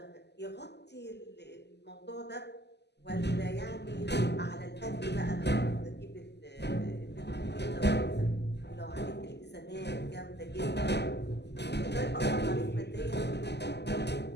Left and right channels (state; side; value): late; right; 0.50 ms